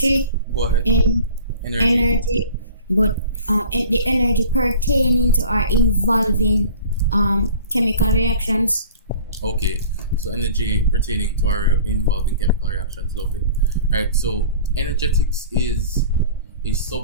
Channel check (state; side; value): inverted; both; correlation -0.43